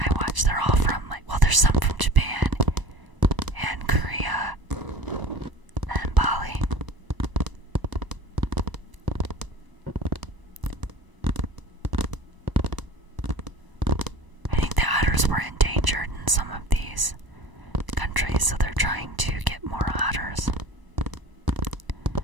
watch. They're all from, like, well, there's some from Japan and Korea and Bali. I think the otters were endangered in some of these countries, so they're trying to get more otters.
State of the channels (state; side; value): late; left; 1.0 ms